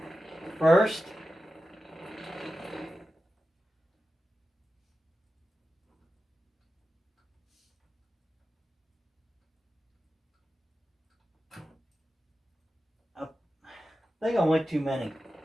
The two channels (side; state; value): both; normal; correlation 0.92